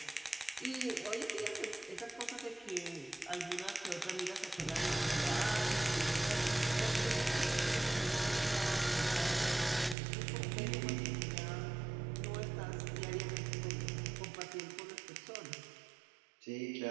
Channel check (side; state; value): left; drops out; at 10.0 s